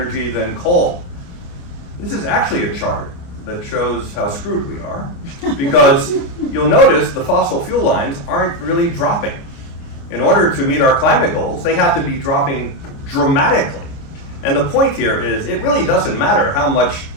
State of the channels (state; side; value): late; right; 29 ms